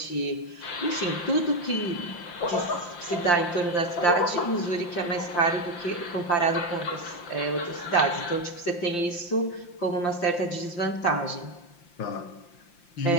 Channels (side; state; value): right; late; 5.8 ms